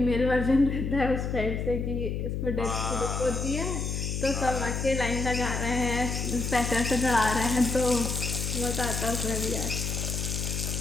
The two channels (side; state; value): left; noise; hum, 2 dB below the sound